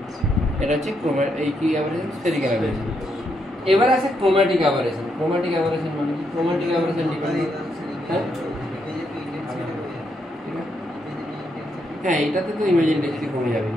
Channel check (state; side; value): normal; both; correlation 0.78